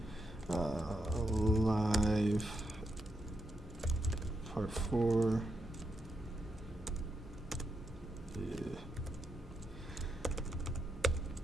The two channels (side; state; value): both; normal; correlation 0.83